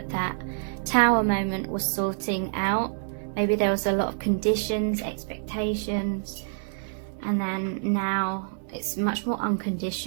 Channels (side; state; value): left; silent; digital silence